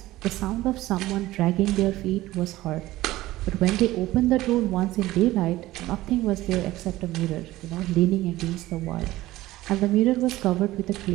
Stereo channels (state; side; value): quieter; left; 16.7 dB